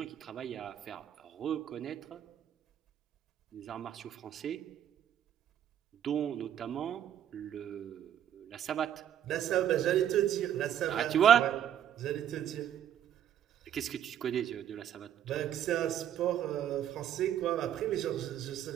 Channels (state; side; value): quieter; left; 10.2 dB